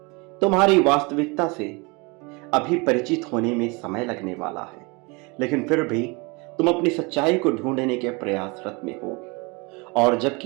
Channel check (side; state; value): left; quieter; 28.4 dB